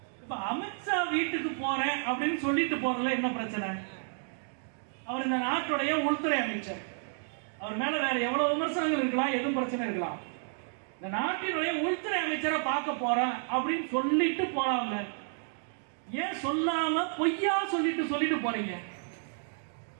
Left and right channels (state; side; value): silent; left; 57 dB below the other